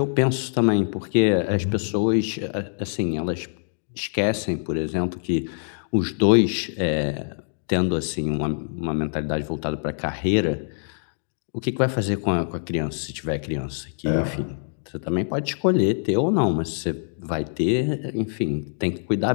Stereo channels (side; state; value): right; silent; digital silence